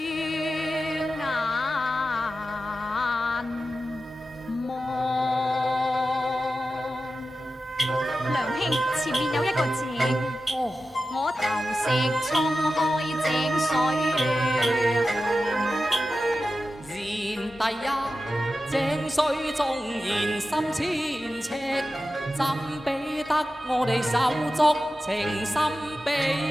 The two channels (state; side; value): normal; both; correlation 0.92